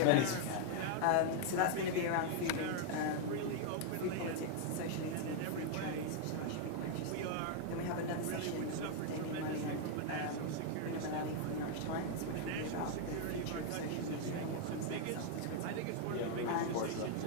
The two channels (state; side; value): different; both; correlation 0.00